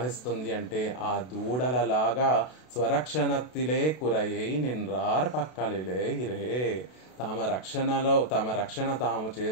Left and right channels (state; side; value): late; right; 32 ms